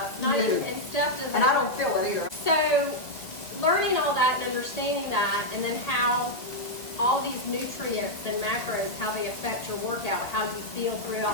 Not even, and Steph doesn't. And I don't feel it either. So, learning all that and understanding that, and then how all these nutrients and macros, how they affect your workout, how you feel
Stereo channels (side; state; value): right; late; 1.7 ms